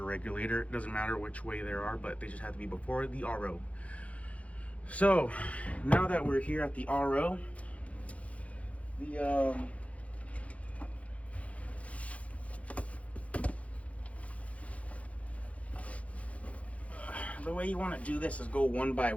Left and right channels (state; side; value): late; right; 0.065 ms